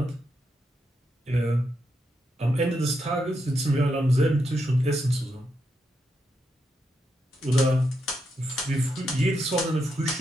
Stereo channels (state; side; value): normal; both; correlation 0.83